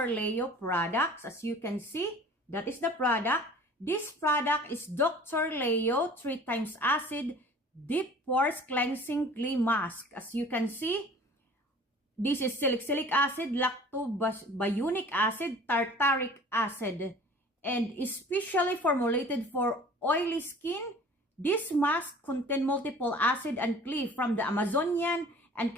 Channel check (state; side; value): normal; both; correlation 0.46